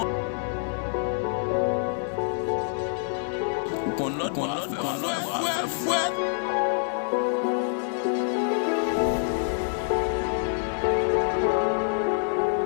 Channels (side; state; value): right; silent; digital silence